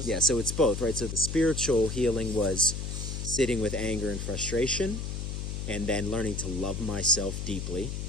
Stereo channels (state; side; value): noise; left; hum, 4 dB below the sound